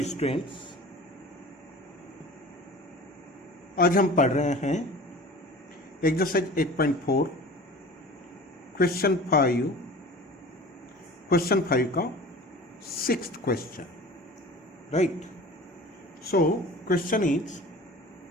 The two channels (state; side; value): normal; both; correlation 0.40